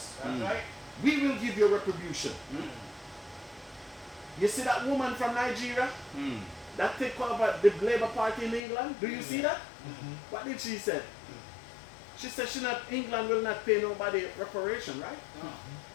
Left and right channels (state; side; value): drops out; right; at 8.6 s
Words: That's right. We will give you retribution. You see that woman from Nigeria that take over the Labour Party in England? Do you see that? What did she say? She said England will not pay nobody reparation, right?